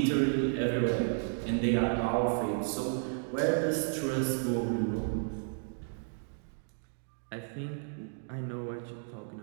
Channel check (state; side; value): silent; left; digital silence